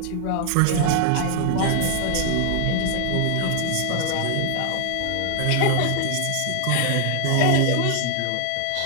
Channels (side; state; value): both; different; correlation 0.00